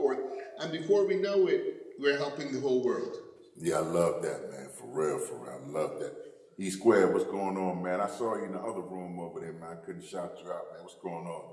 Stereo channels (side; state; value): both; identical; correlation 1.00